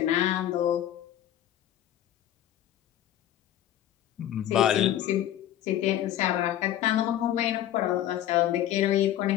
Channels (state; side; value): quieter; right; 12.1 dB